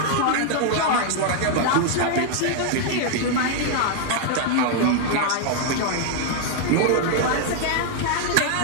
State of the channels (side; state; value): both; different; correlation 0.00